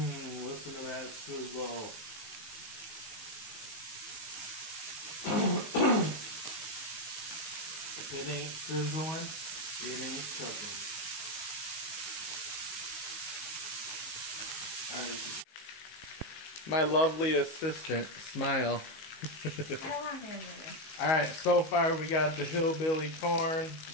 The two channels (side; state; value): right; late; 19 ms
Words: Listen to that sizzle. If it ain't sizzling, it ain't cooking. Alright. My lovely assistant, smile. I don't want hamburger. Alright, so far we got the hillbilly corn,